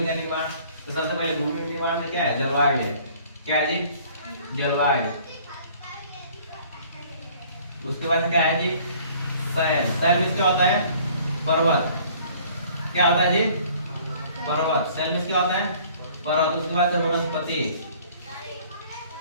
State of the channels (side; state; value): both; inverted; correlation -0.54